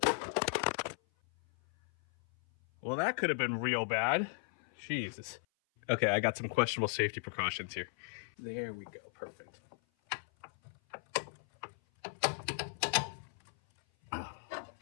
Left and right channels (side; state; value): right; silent; 53 dB below the other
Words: Well, that could have been real bad. Jesus. Okay, I got some questionable safety precautions here. There we go, perfect.